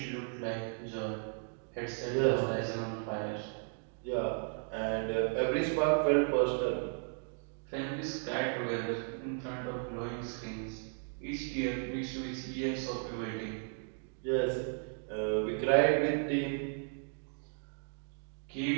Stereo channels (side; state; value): left; silent; 54 dB below the other